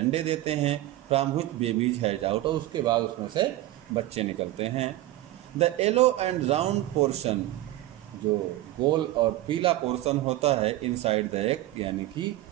देते हैं। From which babies has out, और उसके बाद उसमें से बच्चे निकलते हैं। The yellow and round portion, जो गोल और पीला पोर्शन होता है इनसाइड द एग, यानी कि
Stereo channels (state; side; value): quieter; left; 15.8 dB